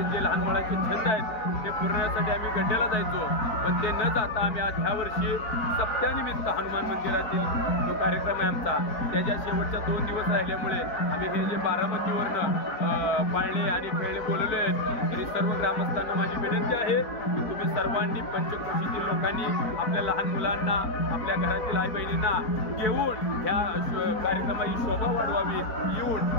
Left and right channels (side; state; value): right; late; 4.4 ms